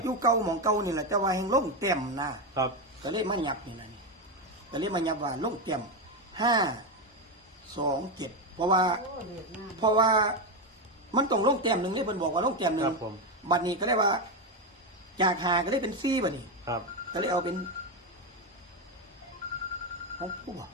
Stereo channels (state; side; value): normal; both; correlation 0.10